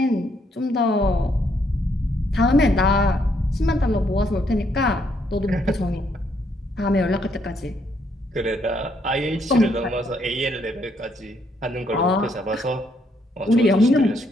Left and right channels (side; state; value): both; normal; correlation 0.72